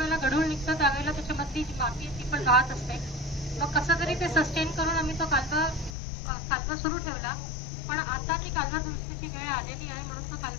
गढूळ निघतं त्यावेळेला त्याच्यामधली जी माती ती पण राहत असते. मग कसं तरी ते सस्टेन करून आम्ही तो कालवा सुरू ठेवला. पण आता ती कालवा दुरुस्तीची वेळ आलेली आहे म्हणून तो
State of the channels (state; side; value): drops out; right; at 6.0 s